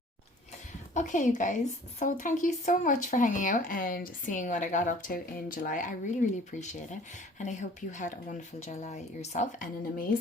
Okay, you guys, so thank you so much for hanging out and seeing what I got up to in July. I really, really appreciate it. And I hope you had a wonderful July yourself and an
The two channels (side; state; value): both; normal; correlation 0.50